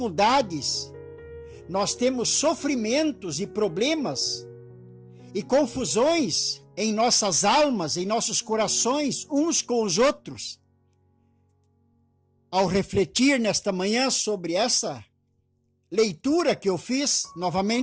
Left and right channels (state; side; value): identical; both; correlation 1.00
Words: nós temos sofrimentos e problemas e confusões em nossas almas, em nossos corações, uns com os outros. Ao refletir nesta manhã sobre essa leitura que eu fiz